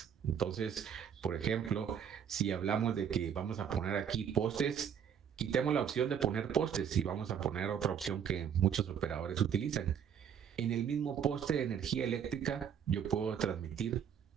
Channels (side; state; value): left; quieter; 8.2 dB